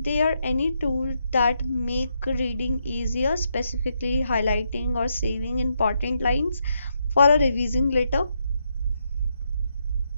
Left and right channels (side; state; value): both; inverted; correlation -0.79